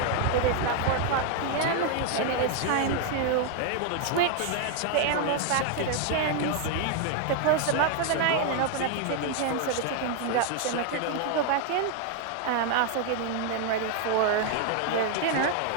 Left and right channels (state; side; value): different; both; correlation 0.00